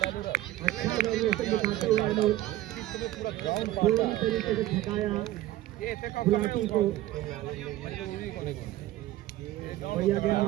अच्छा वेरिएशन दिखाते हुए अनुज पूरी तरीके से थकाया गुलाटी को। बढ़िया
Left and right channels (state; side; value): quieter; left; 15.0 dB